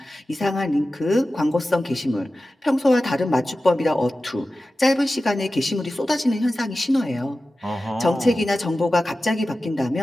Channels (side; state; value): both; normal; correlation 0.94